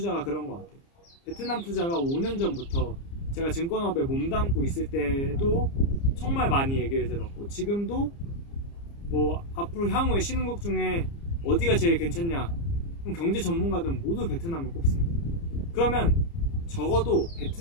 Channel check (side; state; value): right; late; 30 ms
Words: 그런 것 같아요. 베트남 투자가 5년 전부터 제가 증권업에 몸담고 있을 때도 정말 많이 얘기를 들었고, 지금도 뭐 앞으로 향후에 신흥국 중에 어디가 제일 괜찮냐, 그럼 경제 전문가들은 모두 베트남을 꼽습니다. 그러면 적어도